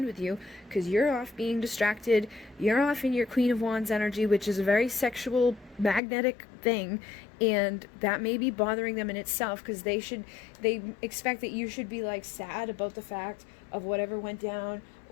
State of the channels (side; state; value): right; drops out; at 6.0 s